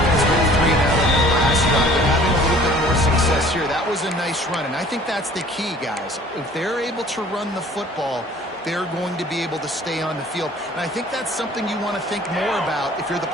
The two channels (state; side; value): normal; both; correlation 0.51